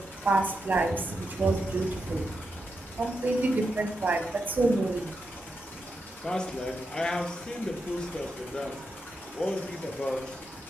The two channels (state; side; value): normal; both; correlation 0.86